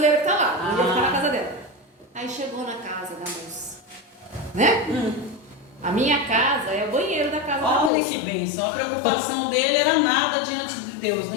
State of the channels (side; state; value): right; drops out; at 7.9 s